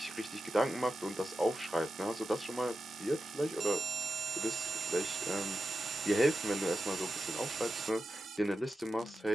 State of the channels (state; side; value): normal; both; correlation 0.90